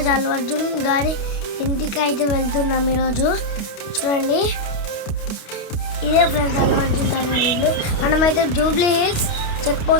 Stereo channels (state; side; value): late; right; 29 ms